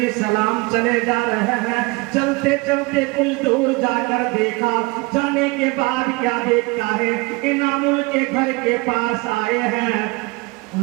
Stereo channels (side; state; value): left; quieter; 25.6 dB